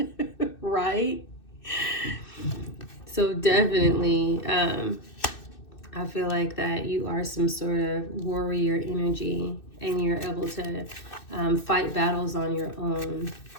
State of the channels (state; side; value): late; right; 2.6 ms